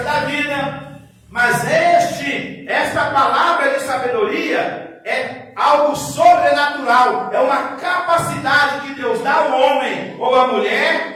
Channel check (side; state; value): both; identical; correlation 1.00